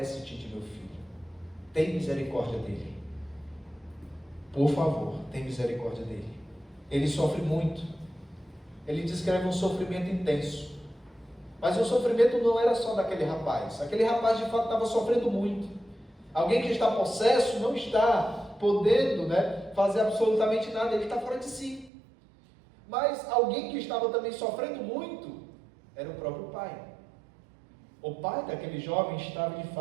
de meu filho. Tem misericórdia dele. Por favor, tem misericórdia dele. Ele sofre muito. Ele descreve um sofrimento intenso. Mas o sofrimento não era só daquele rapaz. Aquele rapaz de fato estava sofrendo muito. Alguém que está possesso não está podendo, fazer absolutamente nada. Ele está fora de si. Mas alguém que estava também sofrendo muito era o próprio pai. O pai daquele jovem estava de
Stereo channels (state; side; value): drops out; left; at 21.9 s